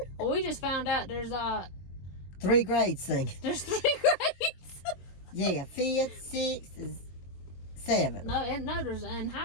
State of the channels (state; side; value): late; right; 22 ms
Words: Well, we just found out there's 3 grades singing. There's 3 grades. Yeah, 5th, 6th, 7th. No, there's in